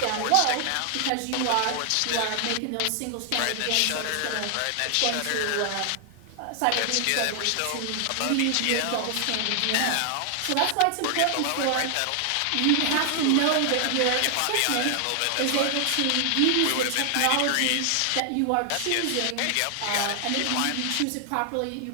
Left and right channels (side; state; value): both; different; correlation 0.00